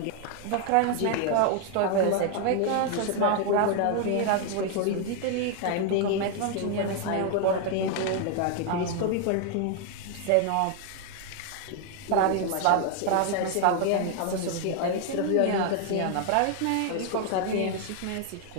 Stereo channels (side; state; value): both; different; correlation 0.00